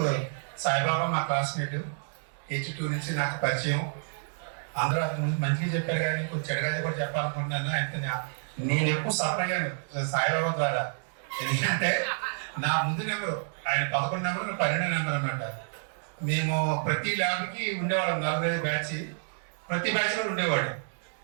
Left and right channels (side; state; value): left; silent; digital silence